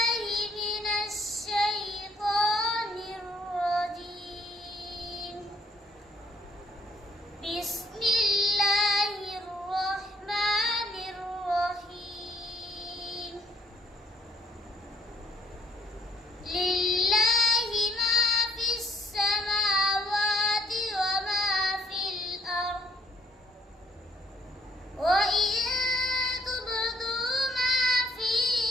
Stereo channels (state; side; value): normal; both; correlation 0.67